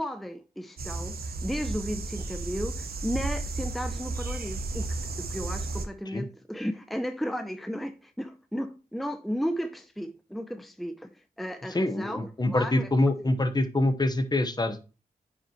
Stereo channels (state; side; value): normal; both; correlation 0.85